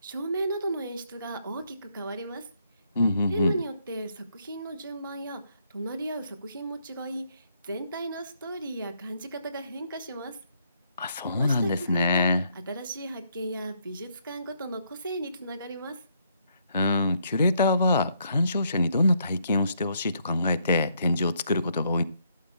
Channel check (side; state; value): both; inverted; correlation -0.72